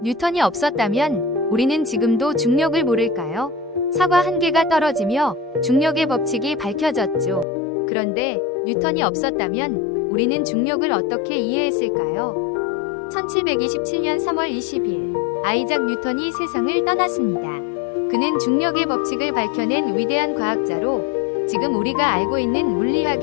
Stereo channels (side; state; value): right; drops out; at 7.5 s